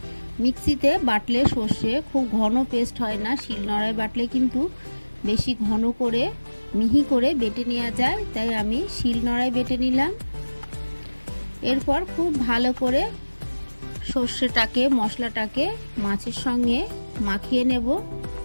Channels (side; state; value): both; inverted; correlation -1.00